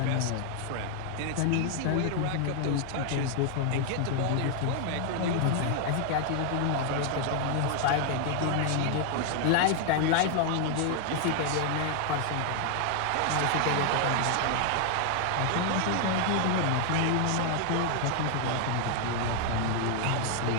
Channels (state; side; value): different; both; correlation 0.00